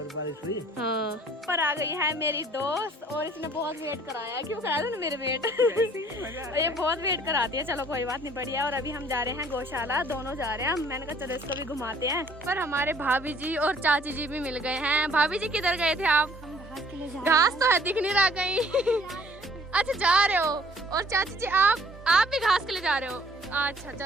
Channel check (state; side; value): normal; both; correlation 0.58